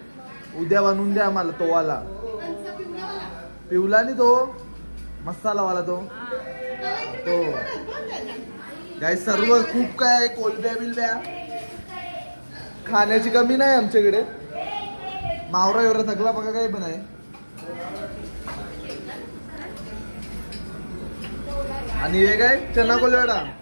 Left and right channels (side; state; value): both; inverted; correlation -1.00